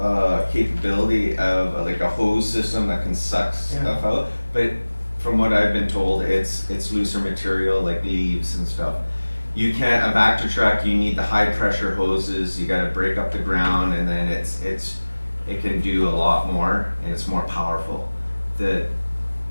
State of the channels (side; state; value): both; inverted; correlation -1.00